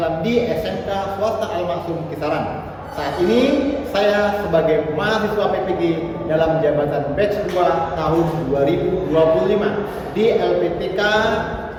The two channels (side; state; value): both; identical; correlation 1.00